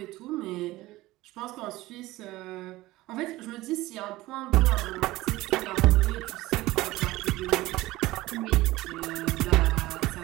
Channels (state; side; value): quieter; left; 18.1 dB